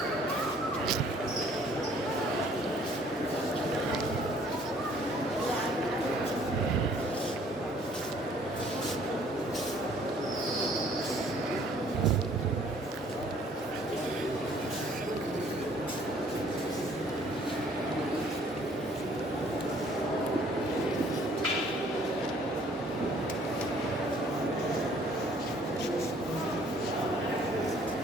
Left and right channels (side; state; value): both; normal; correlation 0.59